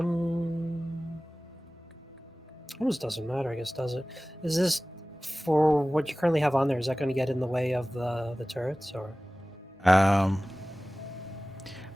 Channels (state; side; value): normal; both; correlation 0.98